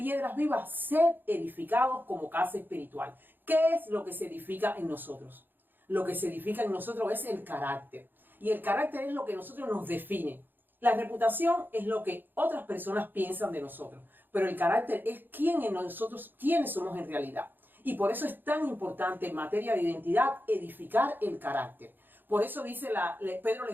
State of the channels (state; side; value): late; left; 0.093 ms